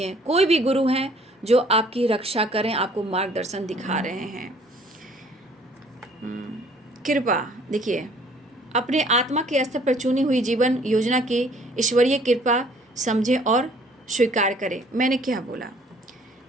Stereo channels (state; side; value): normal; both; correlation 0.57